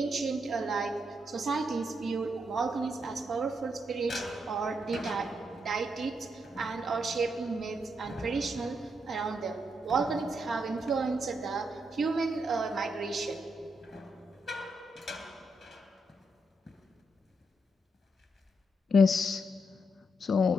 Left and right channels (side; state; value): both; normal; correlation 0.80